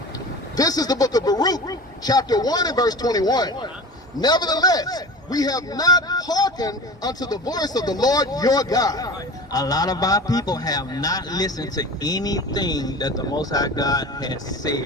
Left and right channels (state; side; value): normal; both; correlation 0.35